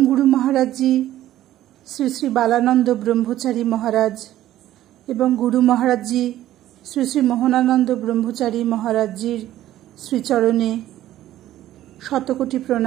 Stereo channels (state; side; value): quieter; left; 13.5 dB